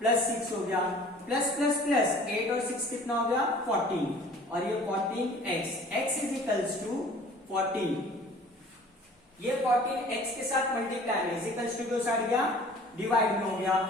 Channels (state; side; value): normal; both; correlation 0.48